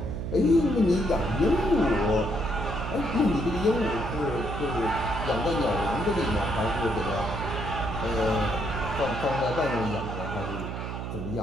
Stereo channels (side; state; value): right; noise; hum, 5 dB below the sound